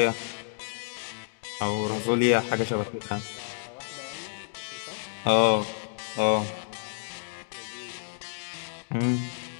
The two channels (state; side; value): silent; right; digital silence